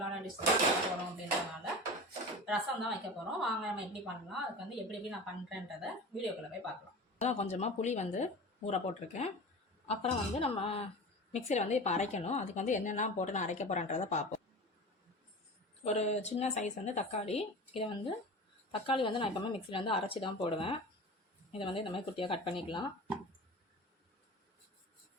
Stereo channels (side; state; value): both; normal; correlation 0.33